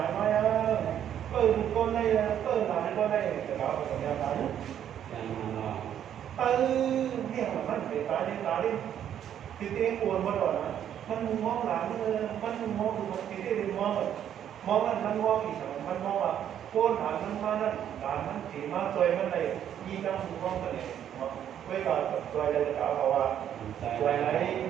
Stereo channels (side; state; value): left; quieter; 9.9 dB